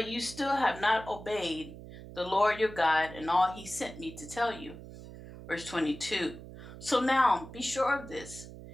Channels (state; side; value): noise; right; hum, 14 dB below the sound